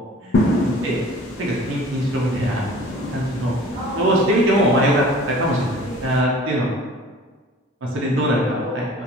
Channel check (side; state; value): both; normal; correlation 0.47